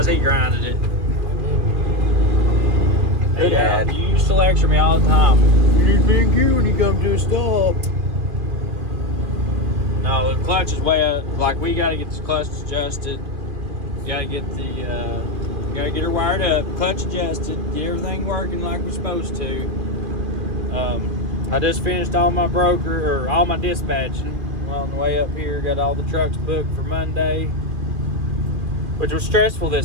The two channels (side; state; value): left; late; 2.5 ms